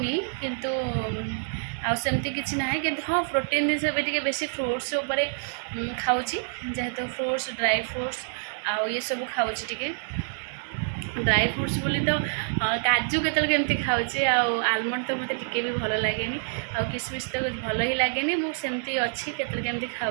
किंतु आमती किसी ना कि हाँ प्रोटीन जिन बेसी फ्रुट्स खाऊँ जेहेतु फ्रुट्स ड्राई फ्रुट्स आउ ये सब खाऊँ टे ड्राई फ्रुट्स बोली तो काजू केमती खाऊे आलमंड तो मत टिके भी भल लगे किसमिश तो भल ही लगे मुझे अच्छी केमती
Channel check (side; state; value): left; silent; digital silence